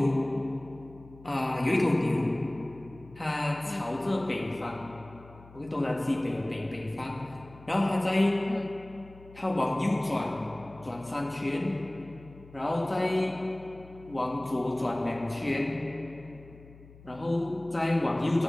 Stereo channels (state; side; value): noise; left; hum, 21 dB below the sound